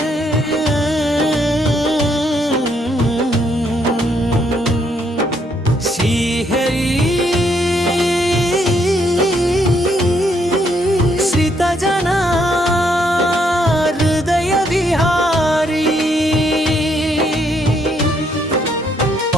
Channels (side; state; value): both; normal; correlation 0.72